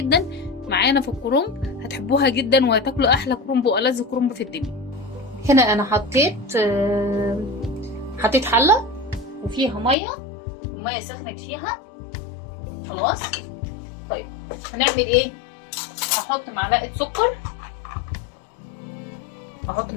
معانا في الكرنب، هتحبوها جدا وهتاكلوا احلى كرنب والذ كرنب في الدنيا. هنا انا حطيت حلة وفيها مية، والمية سخنت فيها خلاص. طيب هنعمل ايه؟ هحط معلقة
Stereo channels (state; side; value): drops out; right; at 10.0 s